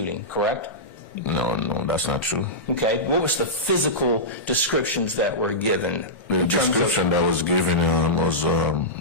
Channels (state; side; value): normal; both; correlation -0.14